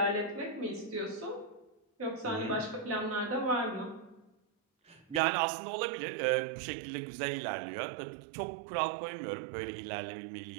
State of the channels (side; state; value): left; drops out; at 5.2 s